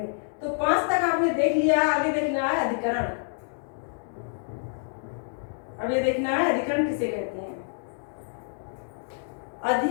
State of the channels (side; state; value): right; silent; digital silence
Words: तो 5 तक आपने देख लिया, आगे देखना है अधिकरण। अब ये देखना है अधिकरण किसे कहते हैं।